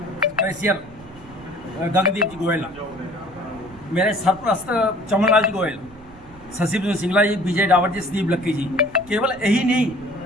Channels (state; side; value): noise; right; rumble, 22 dB below the sound